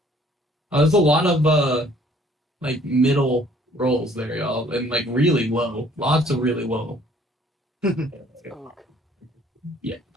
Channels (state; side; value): normal; both; correlation 0.58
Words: a lot of like middle rolls there, y'all, and like really low. Lots of really low.